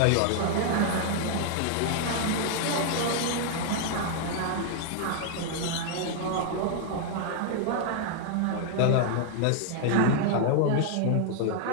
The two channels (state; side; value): different; both; correlation 0.00